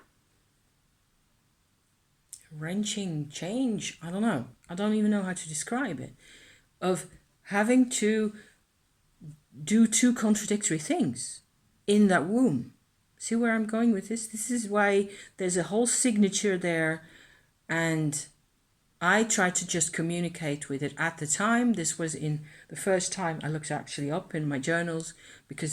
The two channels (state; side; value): identical; both; correlation 1.00